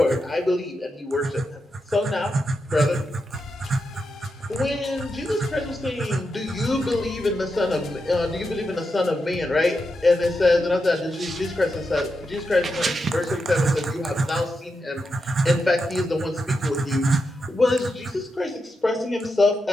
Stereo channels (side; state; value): both; normal; correlation 0.86